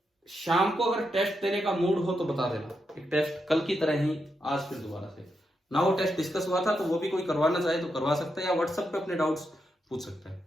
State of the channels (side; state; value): both; normal; correlation 0.84